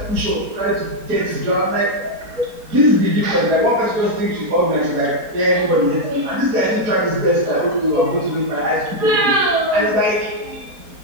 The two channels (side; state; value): left; late; 4.3 ms